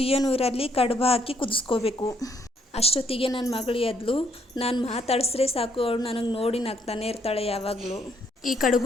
ನೀರಲ್ಲಿ ಕಡುಬು ಹಾಕಿ ಕುದಿಸ್ಕೋಬೇಕು. ಅಷ್ಟೊತ್ತಿಗೆ ನನ್ನ ಮಗಳು ಎದ್ಲು. ನಾನು ಮಾತಾಡಿಸ್ರೆ ಸಾಕು, ಅವಳು ನನಗೆ ನೋಡಿ ನಗ್ತಾನೆ ಇರ್ತಾಳೆ ಯಾವಾಗಲೂ. ಈ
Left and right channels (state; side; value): normal; both; correlation 0.70